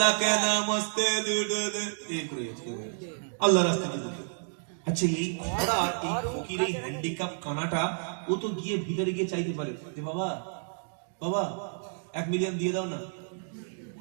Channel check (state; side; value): silent; left; digital silence